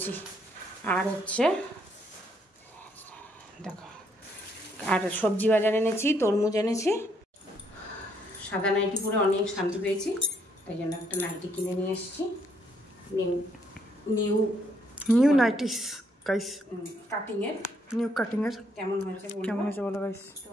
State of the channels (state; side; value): normal; both; correlation 0.71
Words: আর হচ্ছে দেখো, আর সবজি বাজার এনেছি, তরমুজ এনেছি। সাদা নাইটি পরে অনেক শান্তি পেয়েছি, তাই জন্য একটা নাইটি কিনে নিয়ে এসেছি। নিউ নাইটিস গাইস, কাটিং এর, নিউ কাটিং এর। কেমন হয়েছে বলো গাইস? তো